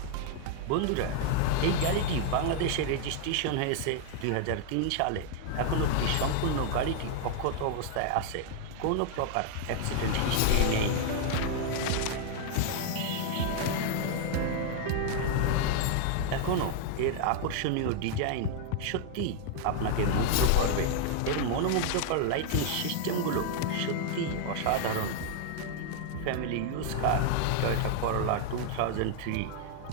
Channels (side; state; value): both; different; correlation 0.00